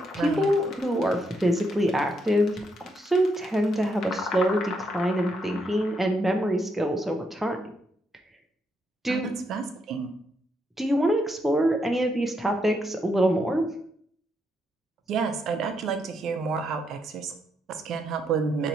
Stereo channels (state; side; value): normal; both; correlation 0.78